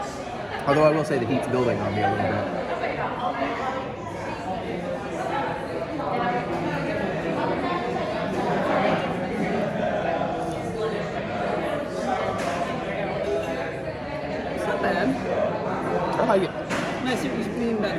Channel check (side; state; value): both; identical; correlation 1.00